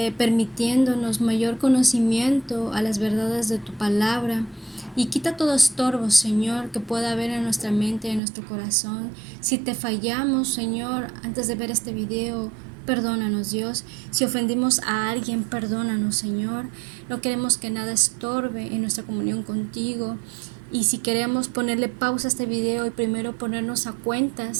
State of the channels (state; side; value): drops out; left; at 8.2 s